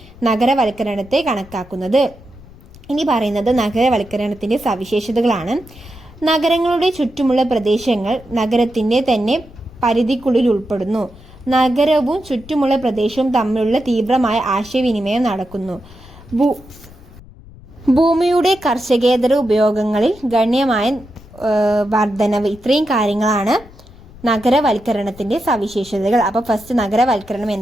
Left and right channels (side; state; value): left; noise; rumble, 21 dB below the sound